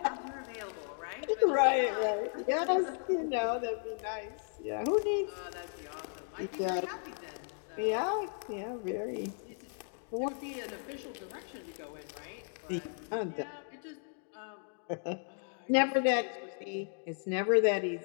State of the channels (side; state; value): right; silent; 54 dB below the other